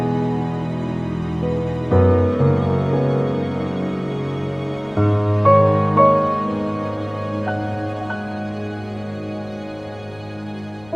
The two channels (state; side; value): noise; left; rumble, 25 dB below the sound